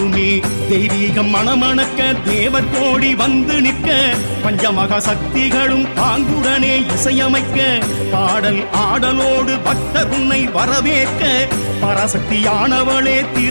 தெய்வீகம் மணமணக்க தேவர் கோடி வந்து நிற்க, பஞ்சமகா சக்திகளும் பாங்குடனே இசையமைக்க, பாடல் ஆடலோடு பக்தர் உன்னை வரவேற்க, பராசக்தியானவளே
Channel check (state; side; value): inverted; both; correlation -1.00